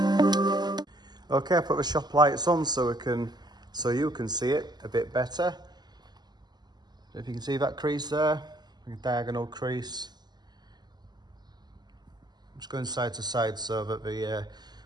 Okay, I put the shop lights on so you can see it a bit better. If you can see that crease there, a diagonal crease. I'm just going side to side so that the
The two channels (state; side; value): late; left; 0.20 ms